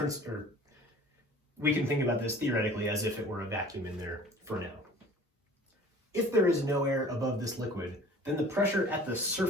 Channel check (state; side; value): normal; both; correlation 0.47